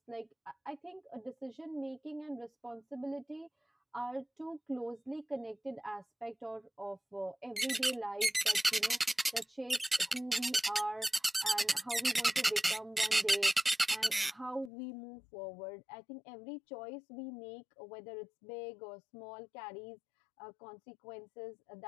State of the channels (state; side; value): drops out; right; at 14.7 s